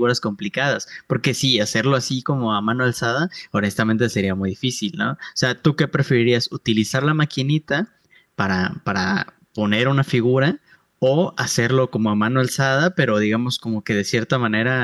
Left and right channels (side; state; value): both; identical; correlation 1.00